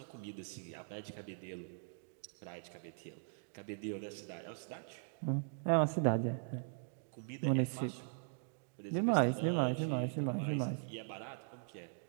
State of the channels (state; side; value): silent; left; digital silence